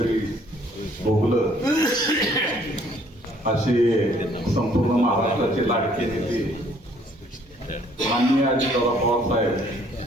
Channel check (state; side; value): normal; both; correlation 0.61